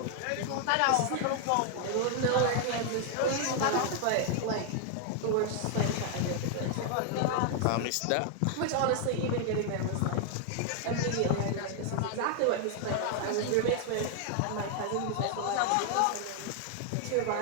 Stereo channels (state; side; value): different; both; correlation 0.00